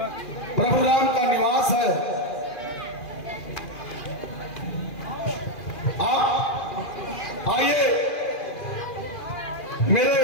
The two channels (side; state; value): right; late; 2.4 ms